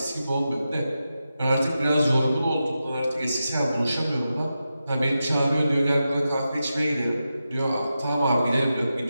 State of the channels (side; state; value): both; inverted; correlation -0.90